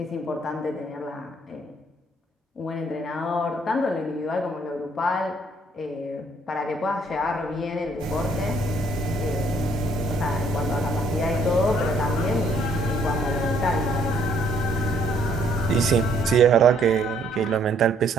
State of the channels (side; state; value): both; normal; correlation 0.64